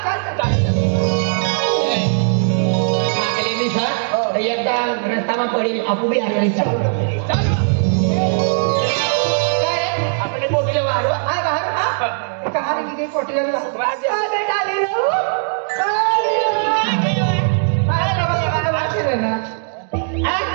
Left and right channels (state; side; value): silent; left; digital silence